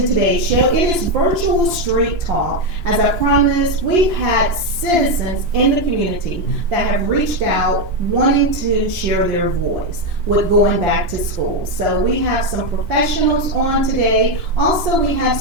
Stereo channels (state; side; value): late; left; 2.9 ms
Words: to today's show. It is Virtual Street Talk. As I promised, we've had citizens in the community that have reached out wanting to share their voice with going back to school. So we have some professionals on today. Also, we have